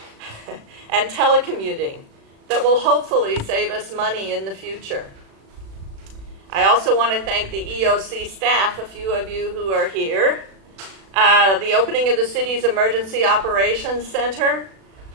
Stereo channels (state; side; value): late; left; 36 ms